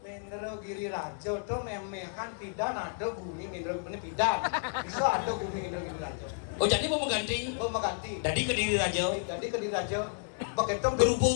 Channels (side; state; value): right; silent; 57 dB below the other